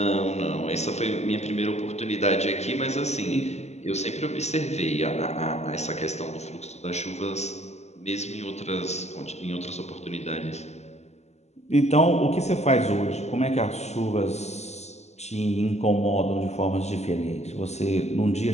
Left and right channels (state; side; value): late; right; 0.32 ms